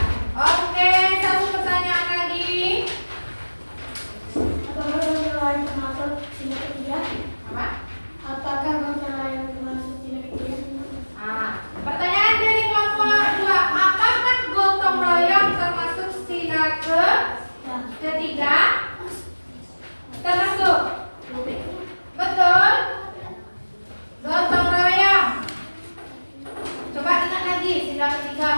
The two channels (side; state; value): both; inverted; correlation -1.00